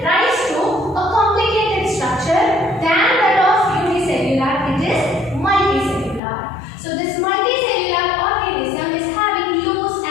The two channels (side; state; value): right; drops out; at 6.2 s